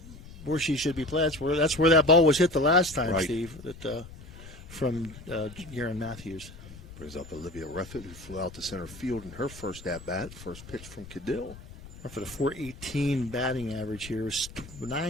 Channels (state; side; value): noise; left; rumble, 16 dB below the sound